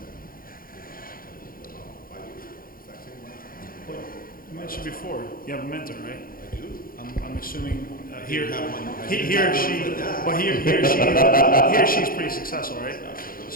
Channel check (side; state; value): right; late; 0.42 ms